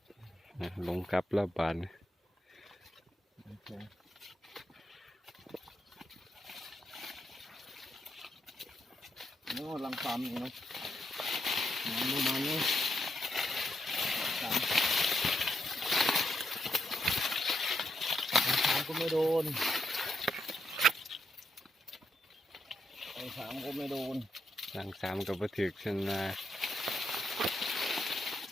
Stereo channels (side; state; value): both; normal; correlation 0.80